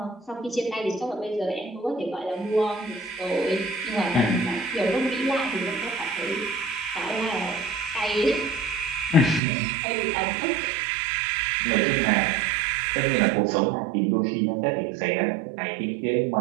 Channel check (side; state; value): left; drops out; at 9.4 s